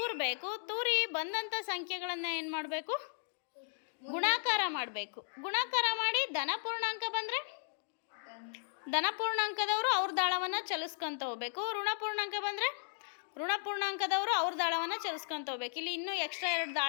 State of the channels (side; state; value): right; silent; digital silence